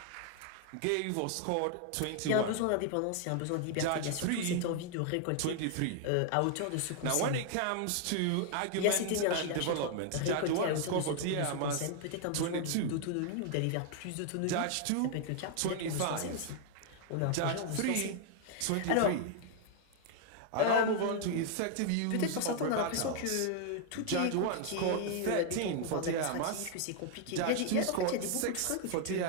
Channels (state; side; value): different; both; correlation 0.00